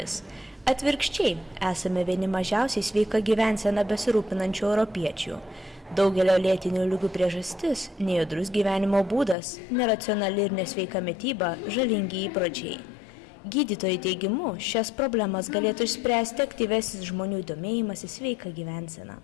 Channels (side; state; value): right; drops out; at 9.3 s